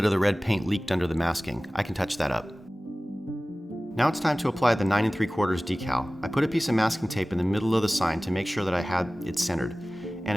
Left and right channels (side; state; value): both; normal; correlation 0.98